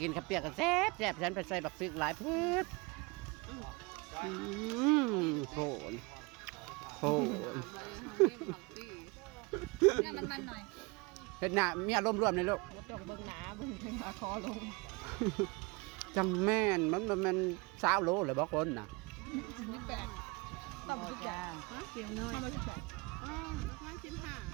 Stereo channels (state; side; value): quieter; left; 26.9 dB